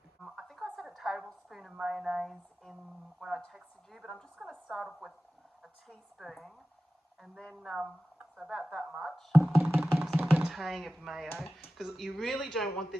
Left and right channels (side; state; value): both; normal; correlation 0.95